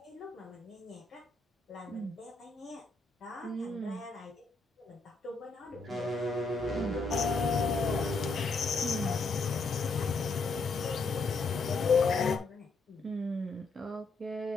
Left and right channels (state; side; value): quieter; right; 3.7 dB